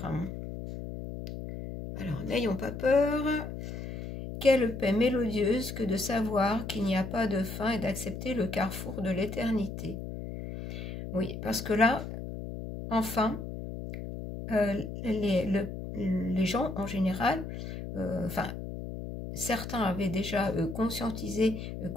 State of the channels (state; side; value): noise; left; hum, 8 dB below the sound